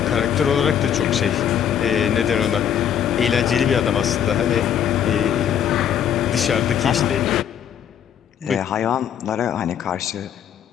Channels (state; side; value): quieter; right; 9.1 dB